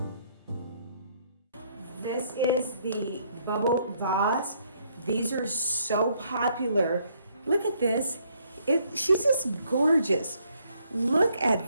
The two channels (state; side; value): inverted; both; correlation -0.69